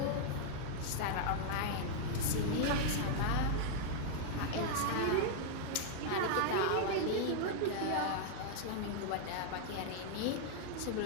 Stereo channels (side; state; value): both; different; correlation 0.00